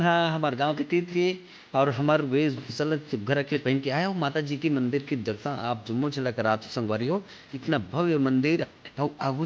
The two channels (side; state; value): both; identical; correlation 1.00